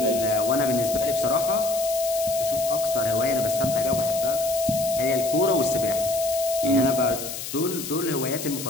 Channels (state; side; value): noise; left; hiss, 8 dB below the sound